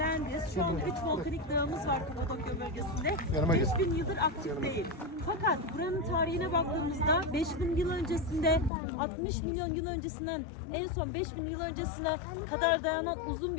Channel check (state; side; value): drops out; right; at 8.7 s